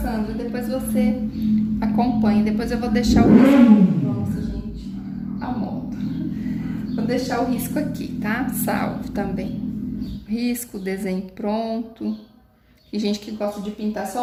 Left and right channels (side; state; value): both; identical; correlation 1.00